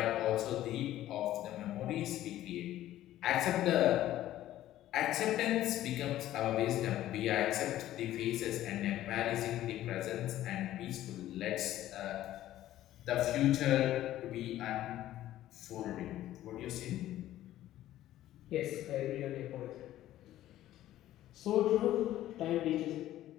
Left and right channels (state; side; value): quieter; right; 13.7 dB